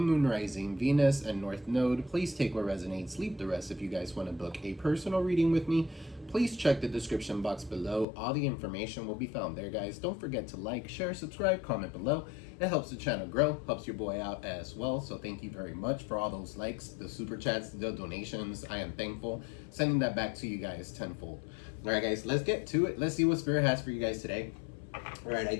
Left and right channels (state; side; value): drops out; right; at 8.1 s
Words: Moon, Rising, Venus, and North Node. Please take what resonates, leave the rest. If you guys want to book a personal reading with me, please check the description box below. All the information will be found there, guys. Don't forget to like, share, subscribe, comment below. It helps the channel grow, helps your boy out as well. So thank you very much for all those likes, the super chats, the donations. I am thankful. Sending that back to you guys tenfold. All right, guys, let's get to it. Let's see what Spirit has for you guys today. All right, I